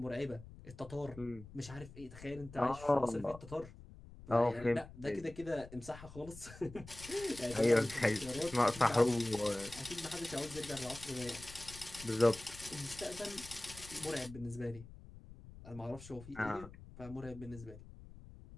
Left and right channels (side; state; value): left; noise; rumble, 16 dB below the sound